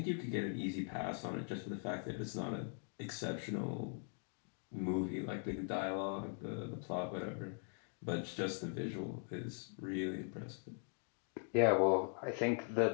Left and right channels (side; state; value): right; silent; 50 dB below the other